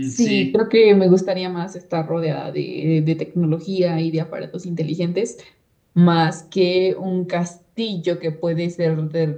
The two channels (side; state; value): both; identical; correlation 1.00